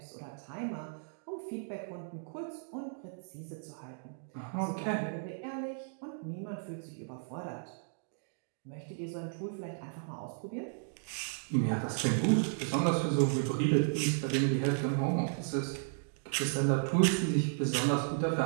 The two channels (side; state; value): left; silent; digital silence